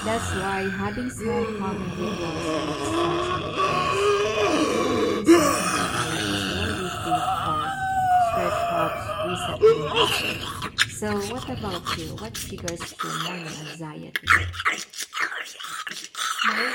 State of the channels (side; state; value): both; identical; correlation 1.00